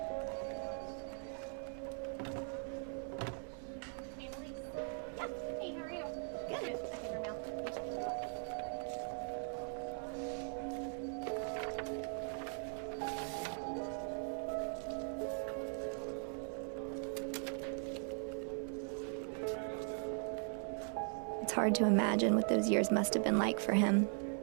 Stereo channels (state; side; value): silent; left; 51 dB below the other